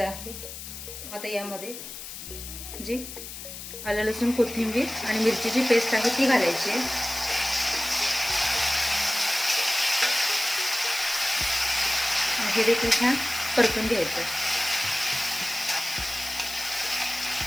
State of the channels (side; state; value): left; noise; hiss, 10 dB below the sound